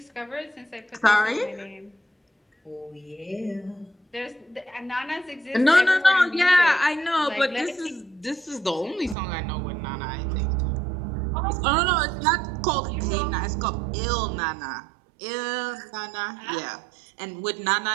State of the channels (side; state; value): left; drops out; at 9.2 s